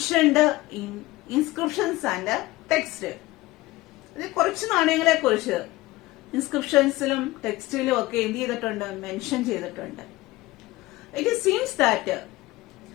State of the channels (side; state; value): right; quieter; 19.1 dB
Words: in inscriptions and text. ഇത് കുറച്ച് നാണയങ്ങളെ കുറിച്ച് ഇൻസ്ക്രിപ്ഷൻസിലും ടെക്സ്റ്റിലും ഒക്കെ എന്ത് ചെയ്തിട്ടുണ്ട്? മെൻഷൻ ചെയ്തിട്ടുണ്ട്. It seems that